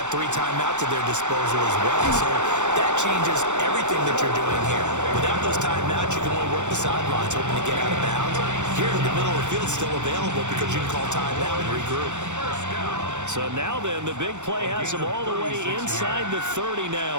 3 timeouts at their disposal as well. So that changes everything that you're doing here. Without those timeouts, you can only work the sidelines, hoping to get out of bounds. Here in the middle of the field, it's still available because you can call timeout and regroup. So now then, the big play has them all the way inside the 30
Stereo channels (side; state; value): left; late; 0.84 ms